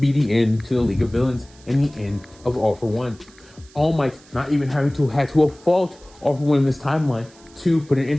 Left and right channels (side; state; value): right; noise; hiss, 26 dB below the sound